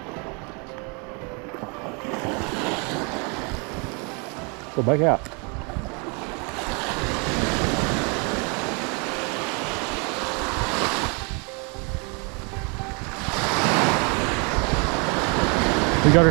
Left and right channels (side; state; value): left; quieter; 33.3 dB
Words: Go back out. We got